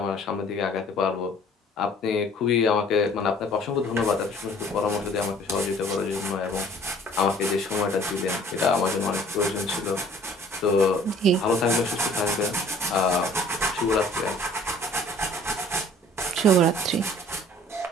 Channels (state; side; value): normal; both; correlation 0.52